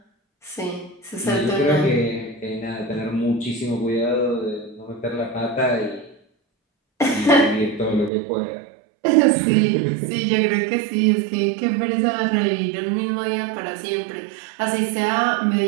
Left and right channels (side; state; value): left; drops out; at 8.1 s